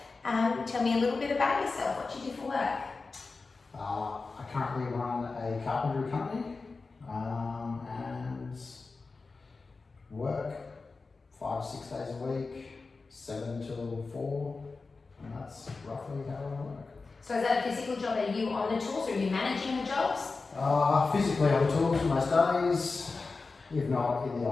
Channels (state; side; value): quieter; right; 4.0 dB